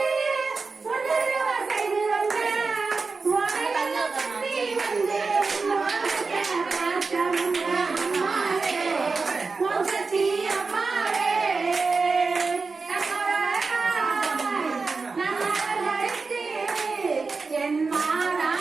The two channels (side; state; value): left; quieter; 4.3 dB